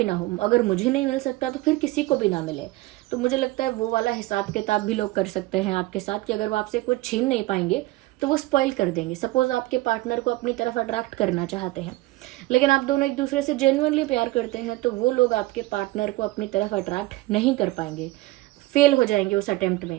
ना हो। अगर मुझे नहीं मिल सकता तो फिर किसी को भी ना मिले। तो मुझे लगता है वो वाला हिसाब किताब भी लोग कर सकते हैं आपके साथ, कि अगर वो आपसे कुछ छीन नहीं पाएंगे तो वो स्पॉइल कर देंगे। सपोज आपके पार्टनर को अपनी तरफ अट्रैक्ट करना चाहते हैं, लेकिन आप दोनों एक दूसरे से जेन्युइनली प्यार करते हैं, तो वो लोग आपके पार्टनर को अपनी तरफ अट्रैक्ट नहीं कर पाएंगे, फेल हो जाएंगे उस अटेम्प्ट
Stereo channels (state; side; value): quieter; left; 19.3 dB